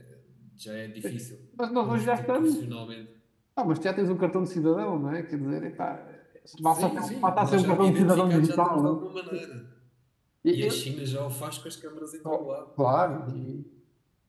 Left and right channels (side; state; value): both; identical; correlation 1.00